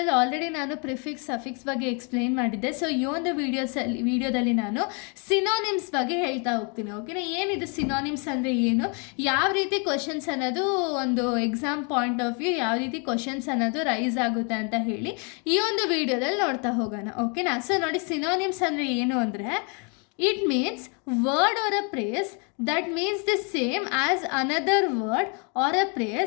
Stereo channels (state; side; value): quieter; right; 35.7 dB